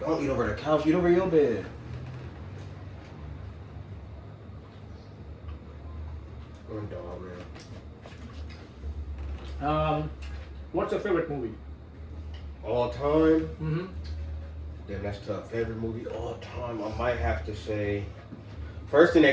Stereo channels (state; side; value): identical; both; correlation 1.00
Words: eat over the couch. Eat over your bed. I'm dog, man. What's your favorite movie? All time? Mm-hmm. Damn, that's tough. Favorite movie all time? I might have to say. First thing